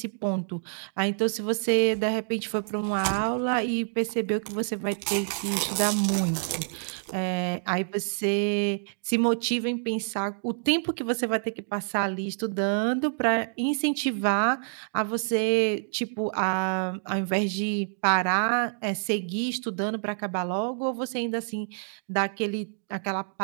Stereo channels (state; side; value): silent; left; digital silence